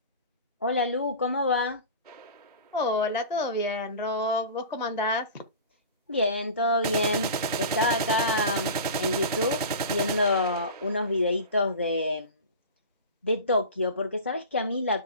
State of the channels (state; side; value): inverted; both; correlation -0.34